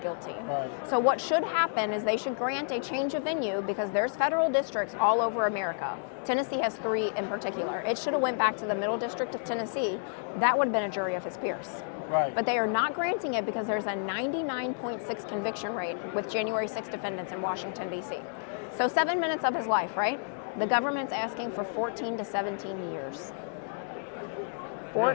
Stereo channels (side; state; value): right; silent; digital silence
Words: Right. So what should happen is they should grant a change of venue because there's federal districts all over America. Tennessee has 3 in particular. It should have went back to the Middle District of Tennessee. That would have been a jury of his peers. Right. But they are not granting it because there's a 99.6 conviction rate with January 6 defendants in Washington, D.C. So 7 minutes of his life, right? The government's asking for 14 to 17 years.